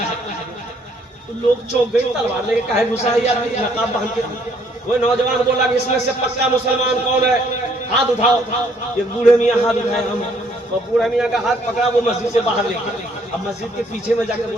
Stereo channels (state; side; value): normal; both; correlation 0.65